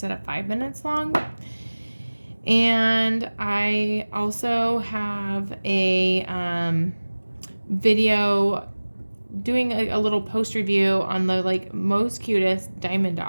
of 5 minutes long. And I also have a video doing a little post review on the like most cutest diamond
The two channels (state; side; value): inverted; both; correlation -1.00